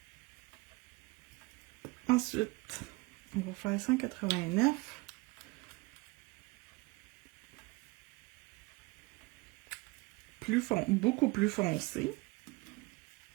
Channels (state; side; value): quieter; left; 24.3 dB